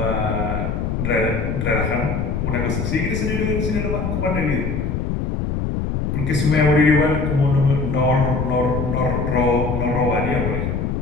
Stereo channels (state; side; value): noise; left; rumble, 1 dB below the sound